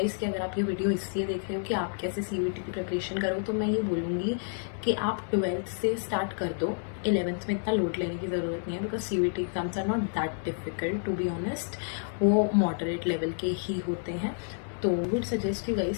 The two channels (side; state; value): right; silent; digital silence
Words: कि अगर आप ये वीडियो इसलिए देख रहे हो कि आप कैसे CUET की प्रिपरेशन करो, तो मैं ये बोलूँगी कि आप 12th से स्टार्ट कर दो. 11th में इतना लोड लेने की ज़रूरत नहीं है, because CUET exams are not that difficult to be honest. वो मॉडरेट लेवल के ही होते हैं. तो वुड सजेस्ट यू